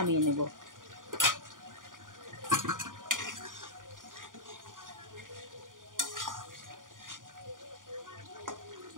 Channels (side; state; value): left; late; 0.89 ms